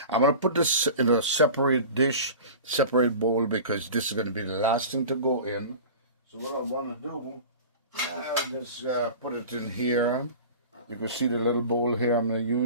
going to put this in a separate dish, separate bowl, because this is going to be the last thing to go in. So what I want to do, just put it in here. You can see the little bowl here I'm going to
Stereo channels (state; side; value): inverted; both; correlation -0.37